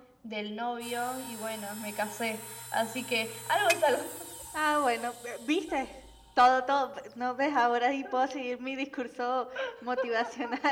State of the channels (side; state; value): both; identical; correlation 1.00